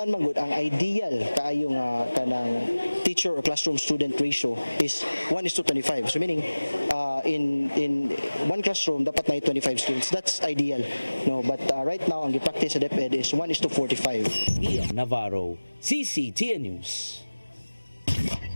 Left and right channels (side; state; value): both; inverted; correlation -1.00